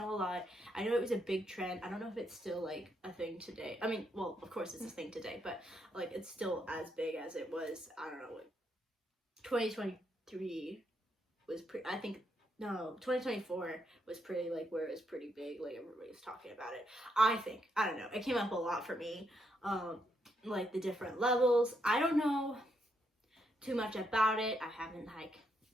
a lot. I know it was a big trend. I don't know if it's still, like, a thing today. I mean, well, of course it's a thing today, but, like, it's still as big as it was, I don't know, like, 2023 was pretty... I think... No, 2024 was pretty, like, where it was pretty big. Like, everybody was talking about it. I think. I don't know. It came up a lot for me. Like, the different levels. I don't know too much about it. I haven't, like,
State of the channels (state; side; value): normal; both; correlation 0.78